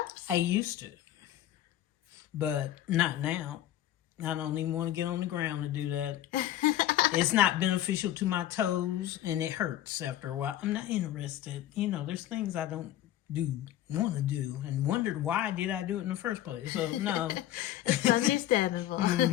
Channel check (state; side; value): quieter; right; 12.9 dB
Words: I used to, but not now. I don't even want to get on the ground to do that. It's not beneficial to my toes, and it hurts after a while. I'm not interested. You know, there's things I don't want to do, and wondered why did I do it in the first place. So, no. It's understandable.